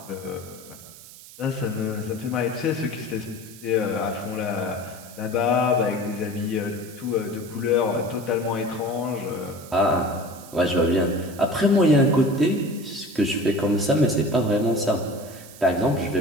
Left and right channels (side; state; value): right; noise; hiss, 18 dB below the sound